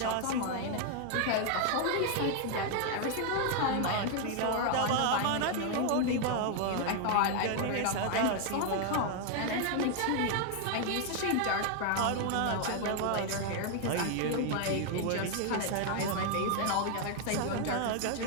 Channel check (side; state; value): both; different; correlation 0.01